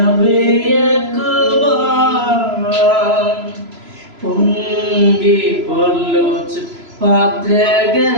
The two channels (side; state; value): left; late; 3.0 ms